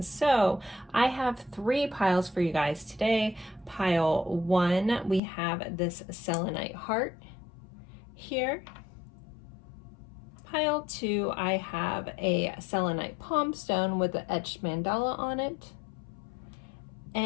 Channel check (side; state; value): right; drops out; at 5.2 s